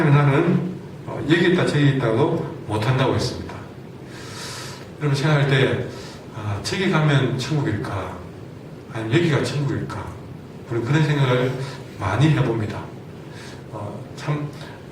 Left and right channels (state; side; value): identical; both; correlation 1.00